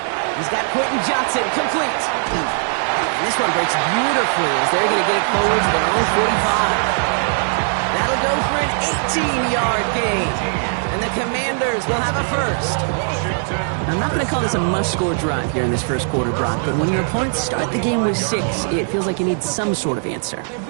He's got Quentin Johnson, complete. And this one breaks beautifully as they're going to get it forward to their own 45. That'll go for an 18-yard gain. And the Commanders will have a first. I'm not going to call this a must-score drive here in this first quarter, Brock, but when your opponents start the game with 6, it feels like you need some sort of answer.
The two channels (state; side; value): silent; left; 59 dB below the other